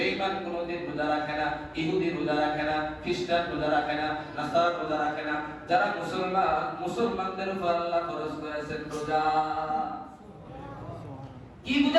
কোনোদিন রোজা রাখে না, ইহুদি রোজা রাখে না, খ্রিস্টান রোজা রাখে না, নাসারা রোজা রাখে না। যারা মুসলমান, মুসলমানদের উপর আল্লাহ ফরজ করেছেন রোজা। কি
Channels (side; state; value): both; identical; correlation 1.00